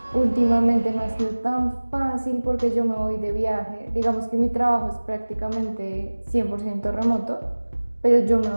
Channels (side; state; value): both; inverted; correlation -1.00